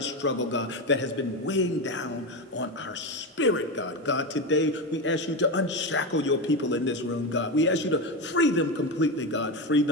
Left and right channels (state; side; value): normal; both; correlation 0.16